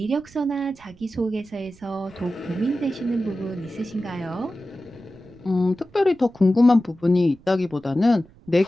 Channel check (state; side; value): noise; right; rumble, 25 dB below the sound